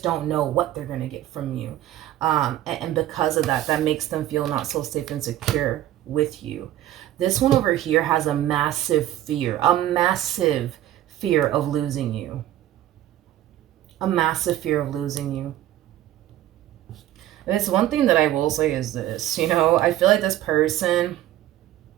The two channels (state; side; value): quieter; left; 13.2 dB